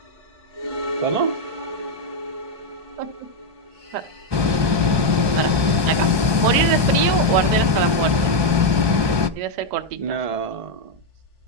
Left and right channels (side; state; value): left; late; 1.2 ms